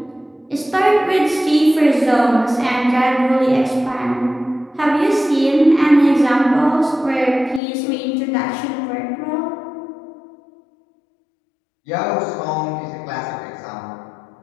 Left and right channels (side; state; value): right; drops out; at 7.6 s